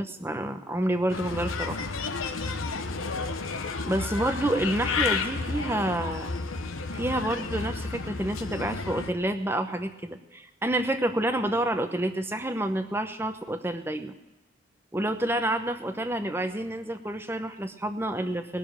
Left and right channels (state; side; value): normal; both; correlation 0.65